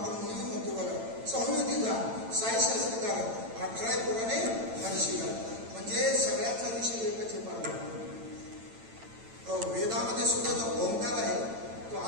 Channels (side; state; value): left; late; 8.9 ms